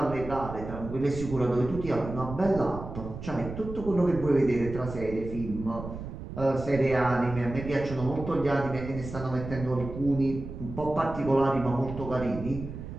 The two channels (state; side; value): noise; right; rumble, 10 dB below the sound